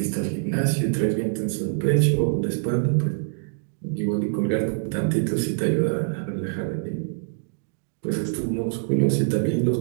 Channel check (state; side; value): silent; left; digital silence